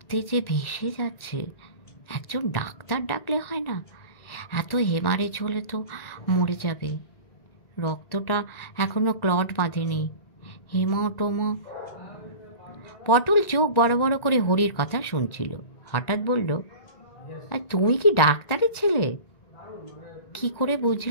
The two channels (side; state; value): right; late; 1.9 ms